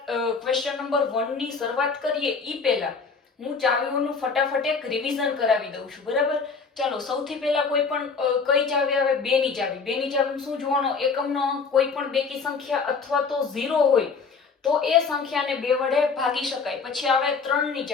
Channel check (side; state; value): right; quieter; 5.1 dB